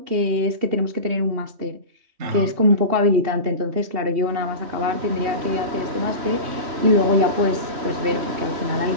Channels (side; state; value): left; late; 3.2 ms